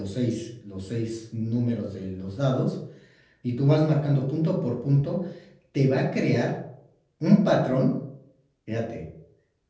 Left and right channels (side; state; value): both; identical; correlation 1.00